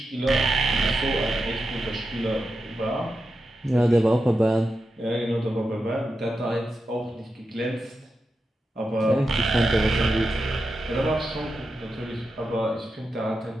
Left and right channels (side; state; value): both; normal; correlation 0.89